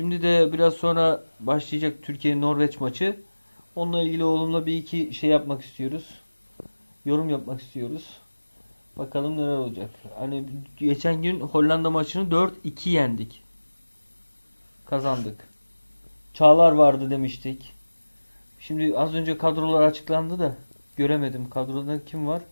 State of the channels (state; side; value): inverted; both; correlation -1.00